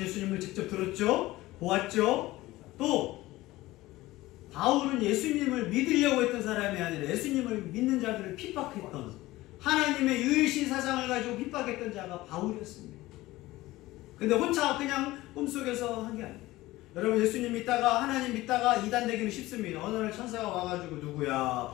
예수님을 직접 들었죠? 보았죠? 또 바울은 예수님을 믿으려고 했던 사람이 아니라 예수님을 믿는 자들을 핍박했던, 하나님의 유일신 사상을 가지고 핍박했던 자가 바울이었습니다. 근데 혼자 그냥 꿈속에서 한 게 아니에요. 여러분, 예수님 믿다가, 하나님 믿다가 이단되기는 쉽습니다. 어느 날 천사가 와가지고 누구야,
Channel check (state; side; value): quieter; right; 18.1 dB